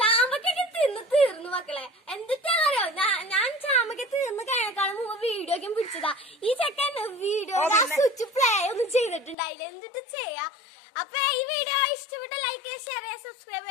തിന്ന് തീർന്നു മക്കളെ. എന്തിട്ടാന്നറിയോ, ഞാൻ ചാമ്പക്ക തിന്ന് കഴിഞ്ഞേക്കാളും മുമ്പ് വീഡിയോ ഒക്കെ പിടിച്ചതാ. ഈ ചെക്കൻ വീഡിയോ സ്വിച്ച് പ്ലേ ഒന്നും ചെയ്തിട്ടുണ്ടായില്ല. എന്തിട്ട് ചെയ്യാ. അപ്പൊ ഈ വീഡിയോ ഇഷ്ടപ്പെട്ട ലൈക്ക് ചെയ്യുക, ഷെയർ ചെയ്യുക, സബ്സ്ക്രൈബ്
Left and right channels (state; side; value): drops out; right; at 9.3 s